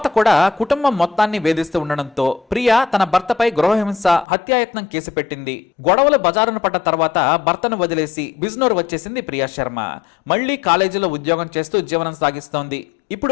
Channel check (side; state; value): right; drops out; at 4.2 s